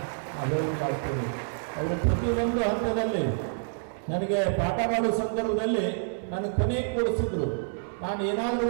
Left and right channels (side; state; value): left; silent; 58 dB below the other